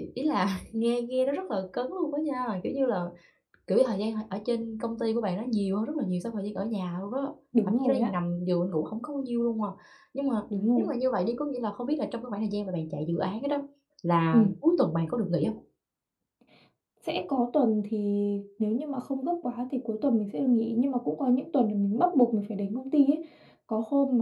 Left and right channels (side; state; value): both; identical; correlation 1.00